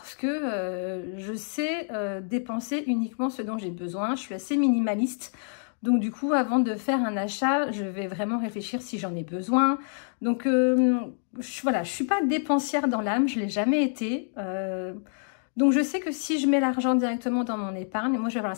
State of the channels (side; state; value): right; silent; digital silence